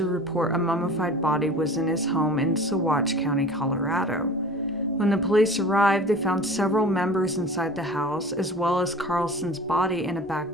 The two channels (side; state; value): both; normal; correlation 0.40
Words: report a mummified body was in his home in Saguache County, Colorado. When the police arrived, they found several members inside the house, as well as Carlson's body in a